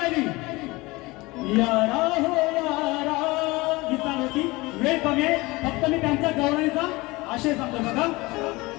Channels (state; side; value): quieter; right; 22.4 dB